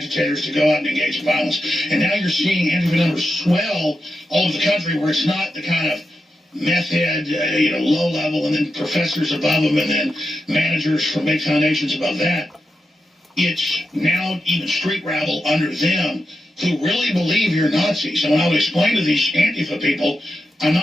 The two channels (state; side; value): normal; both; correlation 0.89